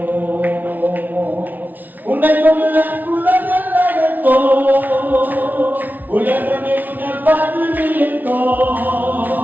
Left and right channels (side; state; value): left; late; 0.082 ms